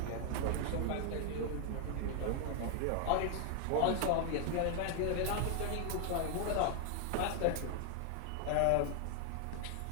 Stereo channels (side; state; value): both; different; correlation 0.00